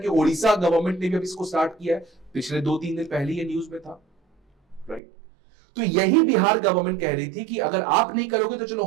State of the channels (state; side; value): drops out; left; at 5.0 s